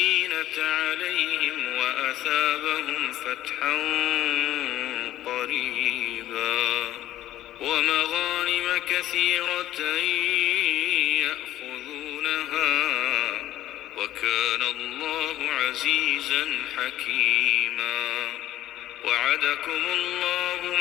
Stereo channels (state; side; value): quieter; right; 13.7 dB